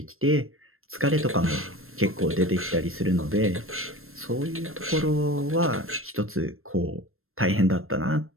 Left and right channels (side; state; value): left; late; 0.62 ms